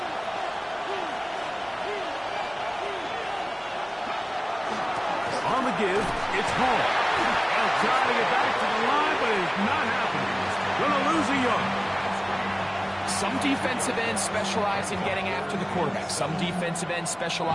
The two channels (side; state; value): both; identical; correlation 1.00